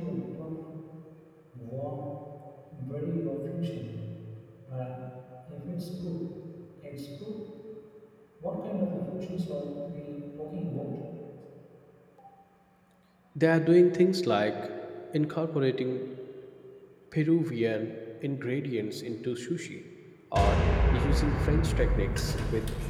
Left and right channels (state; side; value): identical; both; correlation 1.00